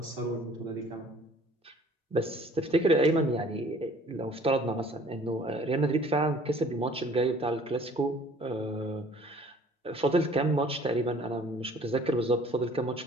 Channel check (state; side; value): normal; both; correlation 0.53